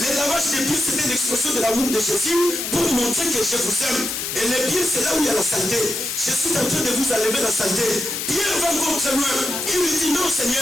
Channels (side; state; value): left; noise; hiss, 4 dB below the sound